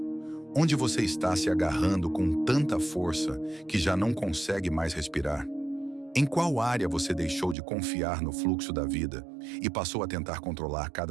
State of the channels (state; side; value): drops out; left; at 7.6 s